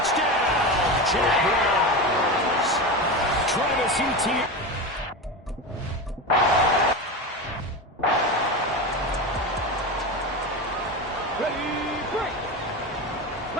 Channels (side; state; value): both; normal; correlation 0.22